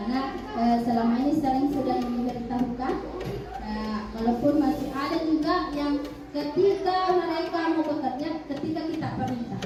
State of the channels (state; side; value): identical; both; correlation 1.00